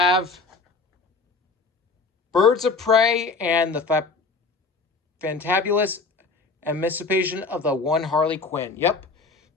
Birds of Prey and the Fantabulous Emancipation of the One Harley Quinn. Yep.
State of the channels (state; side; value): quieter; right; 4.1 dB